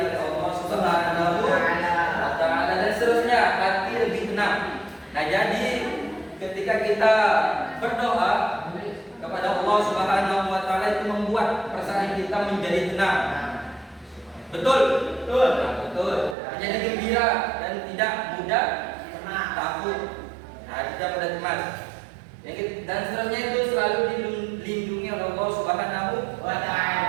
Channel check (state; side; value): drops out; left; at 16.4 s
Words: oleh Allah Subhanahu wa Ta'ala, dan seterusnya hati lebih tenang. Nah, jadi ketika kita berdoa kepada Allah Subhanahu wa Ta'ala itu membuat perasaan kita menjadi tenang. Betul? Betul. Menjadi gembira dan tidak mudah takut. Tidak mudah cemas. Dan seterusnya itu selalu dilindungi oleh Allah Subhanahu wa